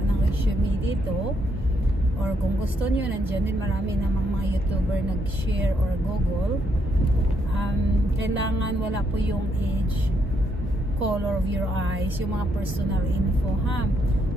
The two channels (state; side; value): normal; both; correlation 0.76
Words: ng resume dito, or kung gusto nyo, nandyan din marami namang mga YouTuber nag-share or Google. Kailangan wala po yung age, color of your eyes, yung mga personal info ha.